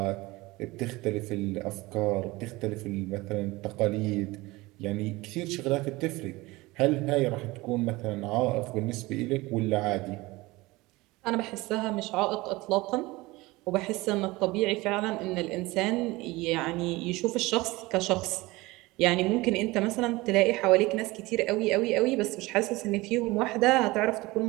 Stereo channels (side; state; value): left; quieter; 21.1 dB